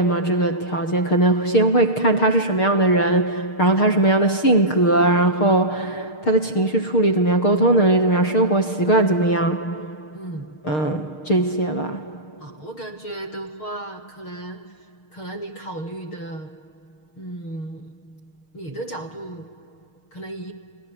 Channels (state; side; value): late; right; 6.5 ms